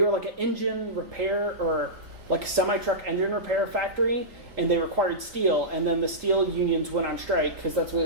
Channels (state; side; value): late; left; 3.8 ms